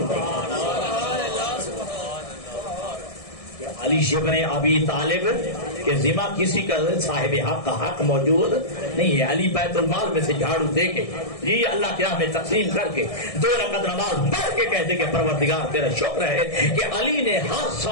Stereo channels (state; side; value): late; right; 1.6 ms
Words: ہے. علی ابن ابی طالب کے ذمہ کسی کا صاحب حق کا حق موجود نہیں ہے. علی بیت المال میں سے جھاڑو دے کے جی اللہ کی راہ میں تقسیم کر کے 2 رکعت نماز پڑھ کے کہتے کہ پروردگار تیرا شکر ہے کہ علی نے ہر